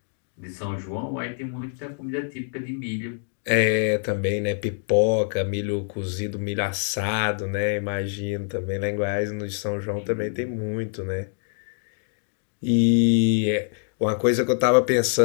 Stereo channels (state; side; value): silent; right; 62 dB below the other